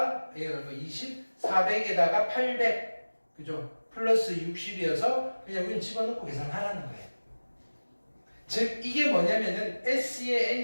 20, 400에다가 800, 그죠? 플러스 60이어서 그냥 우린 집어넣고 계산하라는 거예요. 즉 이게 뭐냐면은 S의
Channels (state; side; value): inverted; both; correlation -1.00